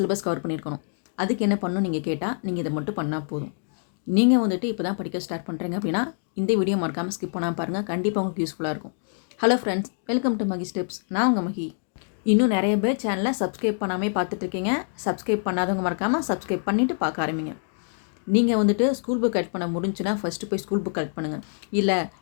கவர் பண்ணியிருக்கணும். அதுக்கு என்ன பண்ணணும்னு நீங்க கேட்டா, நீங்க இத மட்டும் பண்ணா போதும். நீங்க வந்துட்டு இப்ப தான் படிக்க ஸ்டார்ட் பண்றீங்க அப்படின்னா, இந்த வீடியோ மறக்காம ஸ்கிப் பண்ணாம பாருங்க. கண்டிப்பா உங்களுக்கு யூஸ்ஃபுல்லா இருக்கும். Hello friends, welcome to Magi steps. நான் உங்க மகி. இன்னும் நெறைய பேர் சேனல சப்ஸ்கிரைப் பண்ணாமயே பார்த்துட்டு இருக்கீங்க. சப்ஸ்கிரைப் பண்ணாதவங்க மறக்காம சப்ஸ்கிரைப் பண்ணிட்டு பார்க்க ஆரம்பிங்க. நீங்கள் வந்துட்டு ஸ்கூல் புக் கலெக்ட் பண்ண முடிஞ்சுன்னா ஃபஸ்ட்டு போய் ஸ்கூல் புக் கலெக்ட் பண்ணுங்கள். இல்லை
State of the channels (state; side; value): silent; right; digital silence